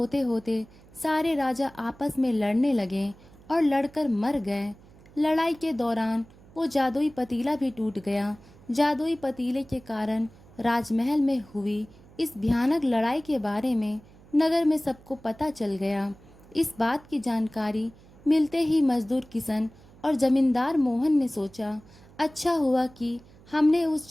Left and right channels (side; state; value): right; noise; hum, 24 dB below the sound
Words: होते सारे राजा आपस में लड़ने लगे और लड़कर मर गए। लड़ाई के दौरान वो जादुई पतीला भी टूट गया। जादुई पतीले के कारण राजमहल में हुई इस भयानक लड़ाई के बारे में नगर में सबको पता चल गया। इस बात की जानकारी मिलते ही मजदूर किशन और जमींदार मोहन ने सोचा, अच्छा हुआ कि हमने उस